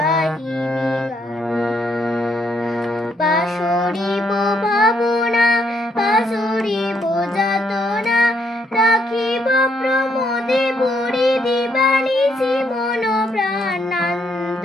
গান পাশরিব ভাবনা পাশরিব যাতনা রাখিব প্রমোদে ভরি দিবানিশি মন প্রাণ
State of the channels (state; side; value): normal; both; correlation 0.73